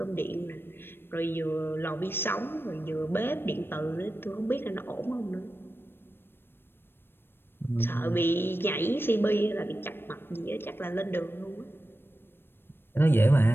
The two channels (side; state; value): right; late; 0.10 ms